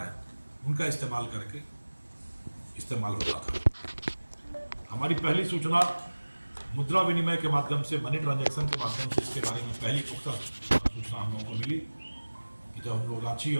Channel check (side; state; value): both; inverted; correlation -1.00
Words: हैं, उनका इस्तेमाल करके इस्तेमाल होता था। हमारी पहली सूचना मुद्रा विनिमय के माध्यम से, मनी ट्रांजैक्शन के माध्यम से इसके बारे में पहली पुख्ता सूचना हम लोगों को मिली कि जब हम लोग रांची